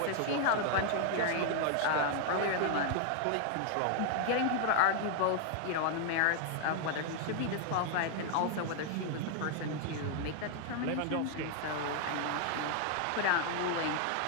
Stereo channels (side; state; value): both; different; correlation 0.00